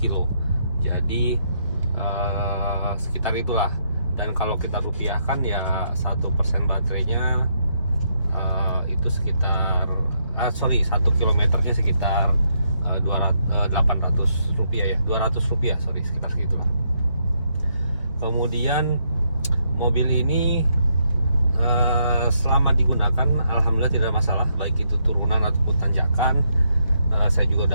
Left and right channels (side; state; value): both; inverted; correlation -0.76